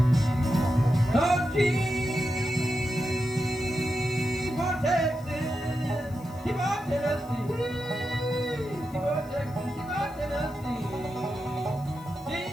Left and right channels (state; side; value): noise; left; hiss, 24 dB below the sound